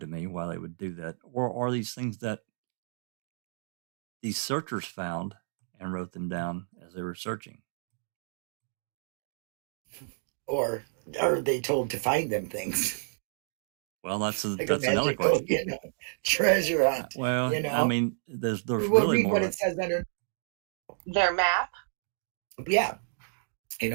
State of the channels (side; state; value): left; silent; digital silence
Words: me why they would do that, or are these things that these searchers found and wrote them down as they were searching? Or are they told to find them things? Well, that's another question. Treasure hunt. Well, I mean, there's we'll really read more. what it says under their map. Yeah,